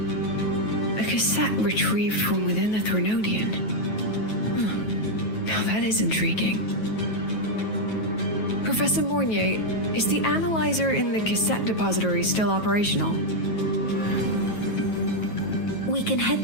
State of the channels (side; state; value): right; late; 9.3 ms